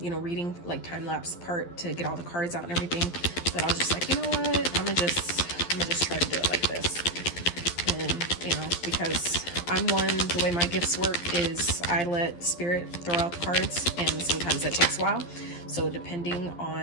reading, like time-lapse part to get all the cards out and everything. But I was just like, you know what? I'm gonna just try to do it like this. And, because the way my gifts work is I let spirit throw out the cards, and sometimes that takes a while. So depending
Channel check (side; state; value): right; late; 12 ms